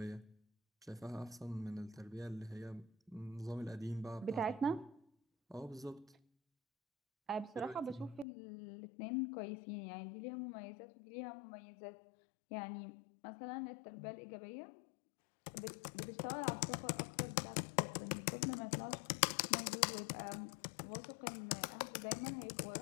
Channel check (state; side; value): drops out; right; at 8.2 s